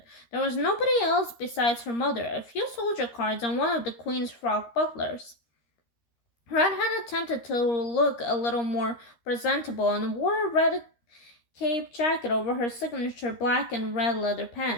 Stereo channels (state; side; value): late; right; 13 ms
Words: There was nobody else besides her mother, a few soldier cards, and one of the Queen's frog butlers. Red had attempted to look a little more presentable and wore a red cape jacket over her signature black and red leather